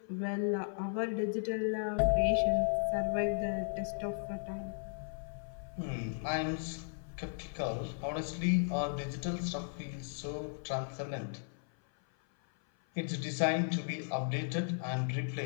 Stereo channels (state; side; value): silent; right; 54 dB below the other